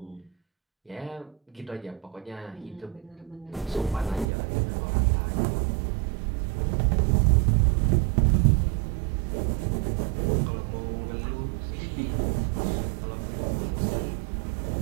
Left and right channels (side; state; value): left; drops out; at 4.2 s